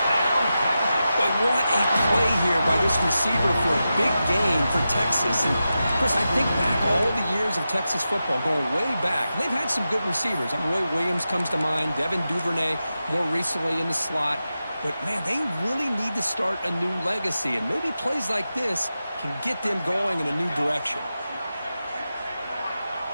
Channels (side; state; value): both; inverted; correlation -0.91